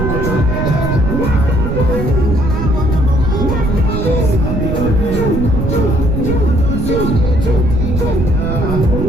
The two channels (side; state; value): right; noise; rumble, 2 dB below the sound